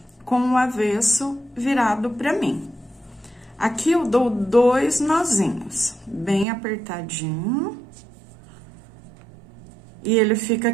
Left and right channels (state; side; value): drops out; left; at 6.5 s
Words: com o avesso virado para mim. Aqui eu dou 2 nozinhos, bem apertadinho, e ele fica